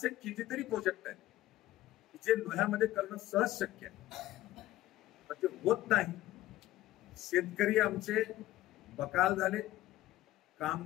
कितीतरी प्रोजेक्ट आहेत जे लोह्यामध्ये करणं सहज शक्य आहे पण ते होत नाही. शेतकरी आमचे बकाल झाले.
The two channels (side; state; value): right; quieter; 15.4 dB